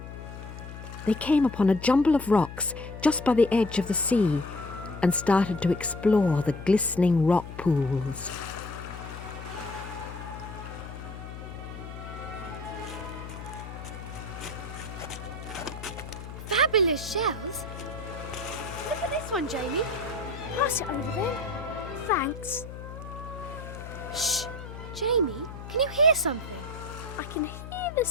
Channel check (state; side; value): noise; left; hum, 11 dB below the sound